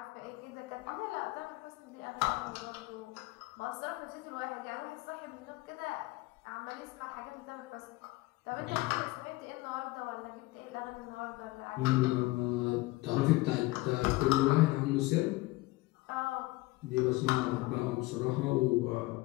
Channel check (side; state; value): right; quieter; 20.7 dB